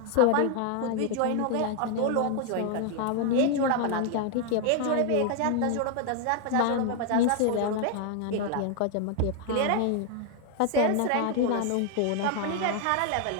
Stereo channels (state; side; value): different; both; correlation 0.00